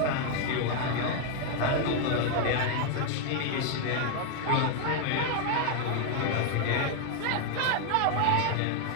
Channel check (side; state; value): both; different; correlation 0.00